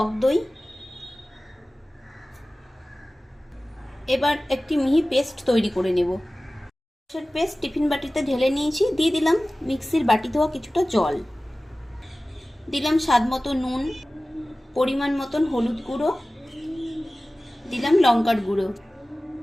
দই। এবার একটি মিহি পেস্ট তৈরি করে নেব। সর্ষের পেস্ট টিফিন বাটিতে ঢেলে নিয়েছি। দিয়ে দিলাম মিক্সির বাটি ধোয়া কিছুটা জল, দিলাম স্বাদ মতো নুন, পরিমাণ মতন হলুদ গুঁড়ো, দিলাম লঙ্কার গুঁড়ো,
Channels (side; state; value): both; normal; correlation 0.97